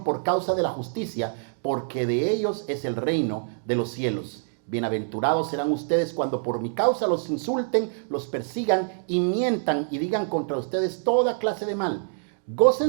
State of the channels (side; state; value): left; silent; digital silence